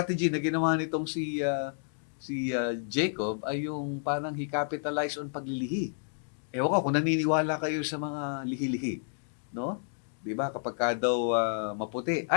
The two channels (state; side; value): silent; right; digital silence